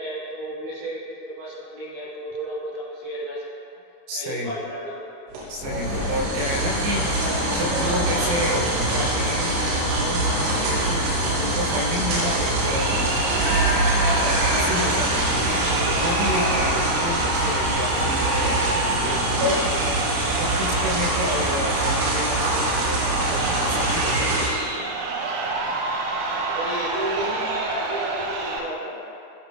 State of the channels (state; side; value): late; left; 29 ms